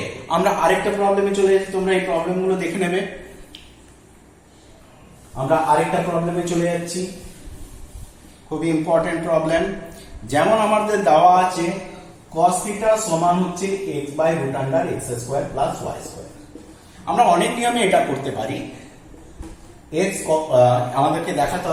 আমরা আরেকটা প্রবলেমে চলে যাচ্ছি, তোমরা এই প্রবলেমগুলো দেখে নেবে। আমরা আরেকটা প্রবলেমে চলে যাচ্ছি, খুবই ইম্পর্টেন্ট প্রবলেম। যেমন আমাদের দেওয়া আছে cos থিটা সমান হচ্ছে x/√x² প্লাস y²। আমরা অনেক নিয়মে এটা করতে পারি। x আমাদেরকে দেখাতে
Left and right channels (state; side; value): identical; both; correlation 1.00